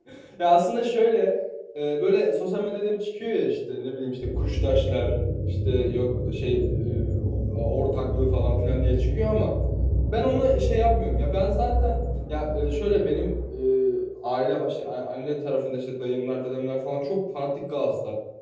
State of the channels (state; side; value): identical; both; correlation 1.00